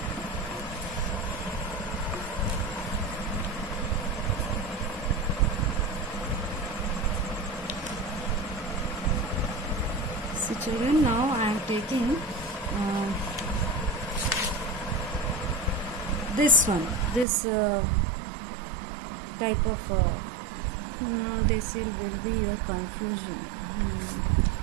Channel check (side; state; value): left; drops out; at 17.2 s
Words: See children, now I am taking this one, this type of no, this will be your confusion.